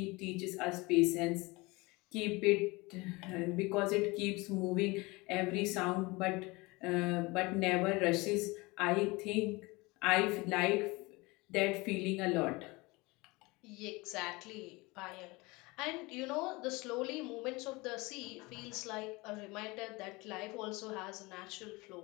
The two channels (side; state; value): right; quieter; 24.0 dB